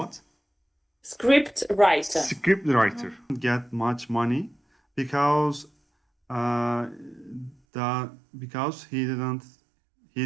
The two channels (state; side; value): drops out; left; at 7.6 s